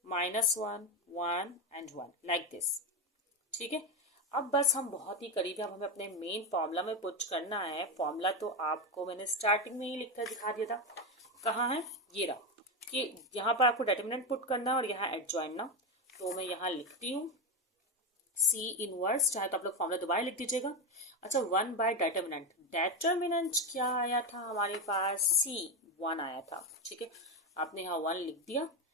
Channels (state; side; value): normal; both; correlation 0.12